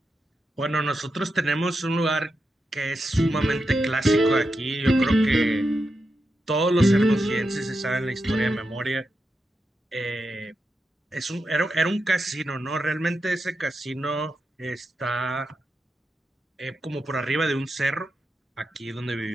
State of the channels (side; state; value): both; normal; correlation 0.87